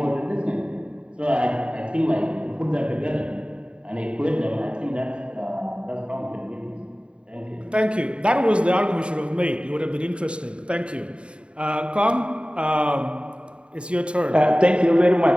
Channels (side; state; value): left; late; 0.056 ms